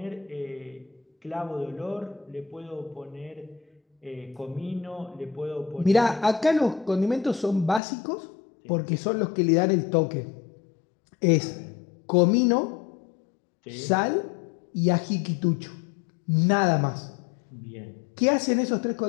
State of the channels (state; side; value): drops out; right; at 7.8 s